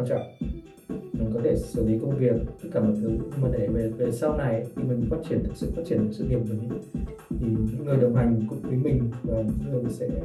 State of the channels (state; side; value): identical; both; correlation 1.00